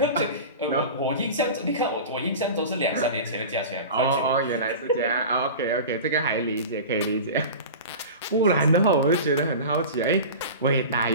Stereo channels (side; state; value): both; inverted; correlation -0.32